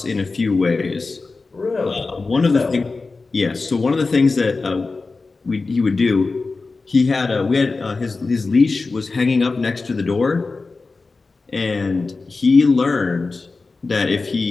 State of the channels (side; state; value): right; quieter; 3.9 dB